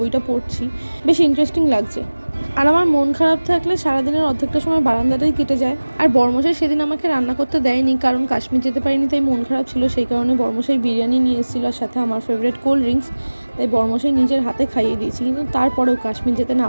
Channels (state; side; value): inverted; both; correlation -1.00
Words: পড়ছি। বেশ ইন্টারেস্টিং লাগছে। আর আমার মন খারাপ থাকলে সারাদিনের অর্ধেকটা সময় বারান্দাটাই কেটে যায়। আর বর্মশাই সেদিন আমাকে রান্না করতে দেয়নি, কারণ কাশ্মীর যেতে পারিনি, তাই মন খারাপ ছিল। সেই কারণে বর্মশাই বিরিয়ানি নিয়ে এসেছিল, আর সাথে আমার ফেভারিট কোল্ড ড্রিঙ্কস। তাই বর্মশাই নিজের হাতে খাইয়ে দিয়েছি। কিন্তু তারপরেও কাশ্মীর যেতে না